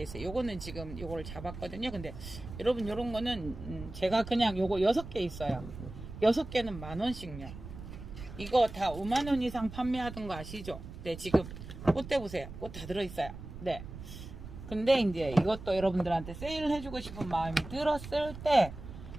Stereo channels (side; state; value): right; noise; rumble, 12 dB below the sound